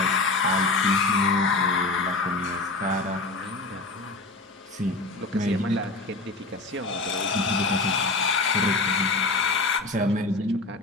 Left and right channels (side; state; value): right; quieter; 3.4 dB